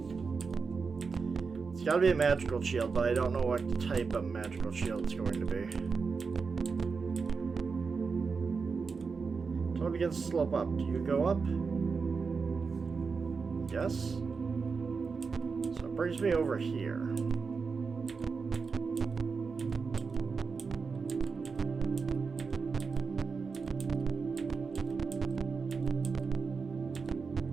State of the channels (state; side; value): quieter; left; 5.0 dB